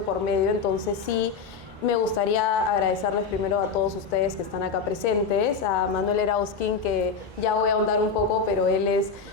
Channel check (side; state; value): right; quieter; 5.2 dB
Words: por medio. Entonces sí, me gustaría agradecerles primero a todos ustedes que están acá presentes, a Manuel Erauskin, que ya voy a ahondar un poco, pero él es